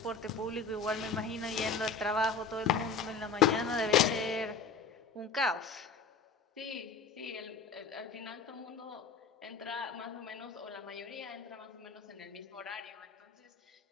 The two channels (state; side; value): quieter; right; 5.2 dB